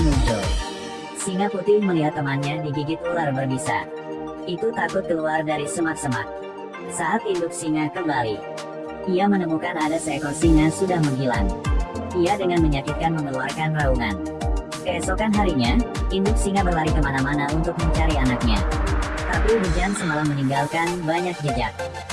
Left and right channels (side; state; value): both; identical; correlation 1.00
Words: Singa putih melihat temannya digigit ular berbisa. Itu takut keluar dari semak-semak. Saat induk singa kembali, ia menemukan ada seekor singa sudah menghilang. Ia dengan menyakitkan mengeluarkan raungan. Keesokan harinya, induk singa berlari kemana-mana untuk mencari anaknya. Tapi hujan semalam meninggalkan banyak jejak.